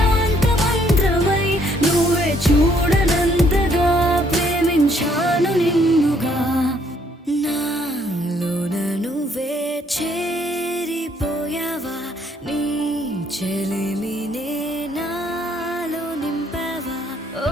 మంత్రమై నువ్వే చూడనంతగా ప్రేమించాను నిన్నుగా నాలోన నువ్వే చేరిపోయావా నీ చెలిమినే నాలో నింపావా ఓ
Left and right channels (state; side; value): normal; both; correlation 0.67